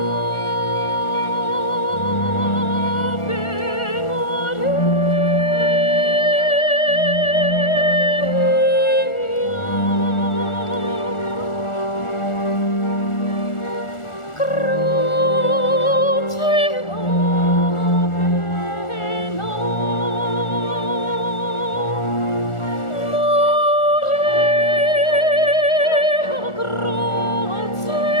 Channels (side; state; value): right; late; 1.4 ms